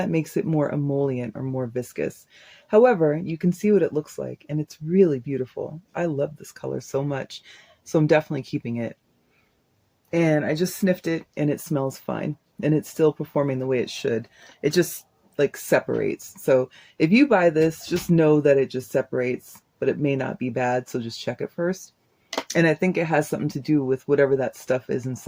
makes it more emollient or more viscous. However, you can see what it looks like, and it's really beautiful. I love this color so much, so I'm definitely keeping it. And I just sniffed it, and it smells fine, and it's still performing the way it should. It just like separates. So if you buy this, just know that it just separates, but it may not be bad, so just check it first. And I think it has something to do with whatever that stuff is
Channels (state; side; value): identical; both; correlation 1.00